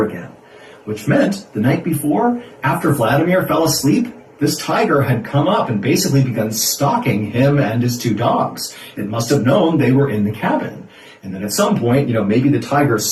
again, which meant the night before, after Vladimir fell asleep, this tiger had come up and basically begun stalking him and his two dogs. It must have known they were in the cabin. And then at some point, maybe the tiger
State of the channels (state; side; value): identical; both; correlation 1.00